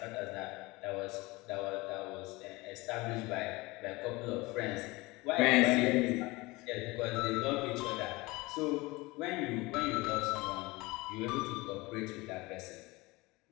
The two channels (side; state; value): right; quieter; 22.5 dB